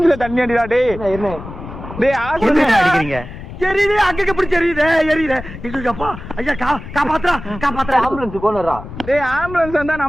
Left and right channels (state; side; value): noise; left; rumble, 12 dB below the sound